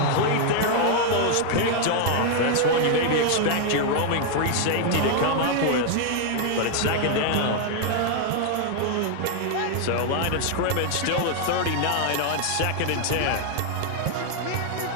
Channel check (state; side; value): different; both; correlation 0.00